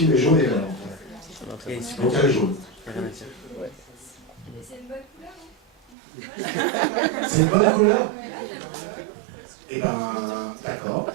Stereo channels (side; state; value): left; drops out; at 6.0 s